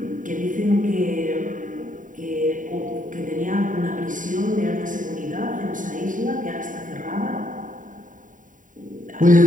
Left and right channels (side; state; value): left; late; 0.38 ms